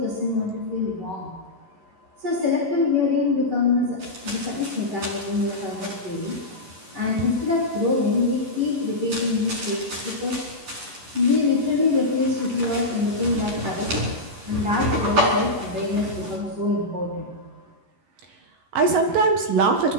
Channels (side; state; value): left; late; 11 ms